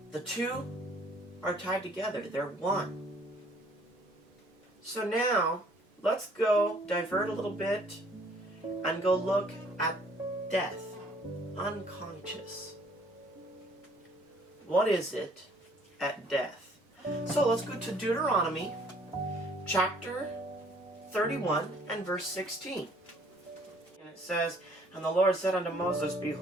the two are tied together. They're one. So now, let's go divert a little bit and go look at death, unconscious. What is it at death? So let's go to Deuteronomy chapter 31 and verse 16. And it says, And the Lord said unto Moses,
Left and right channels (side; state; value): both; normal; correlation 0.59